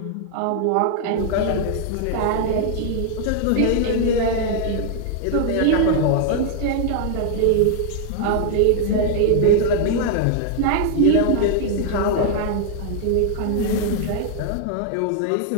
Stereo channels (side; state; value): both; different; correlation 0.00